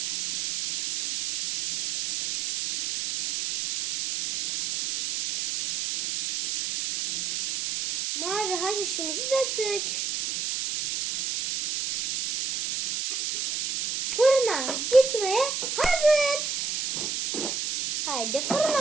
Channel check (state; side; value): noise; right; hiss, 3 dB below the sound